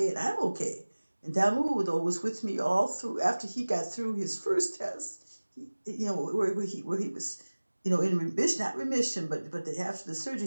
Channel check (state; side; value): inverted; both; correlation -1.00